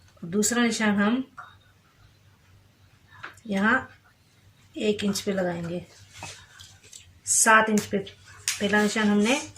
दूसरा निशान हम यहाँ 1 इंच पे लगाएंगे। 7 इंच पे पहला निशान हमने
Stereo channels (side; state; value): both; identical; correlation 1.00